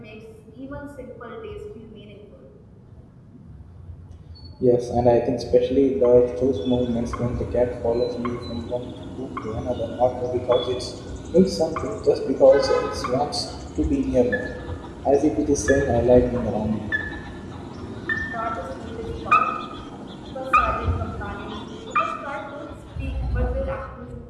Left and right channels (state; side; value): identical; both; correlation 1.00